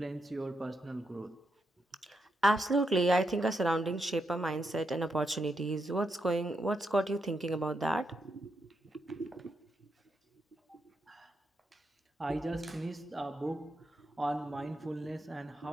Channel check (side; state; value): both; normal; correlation 0.82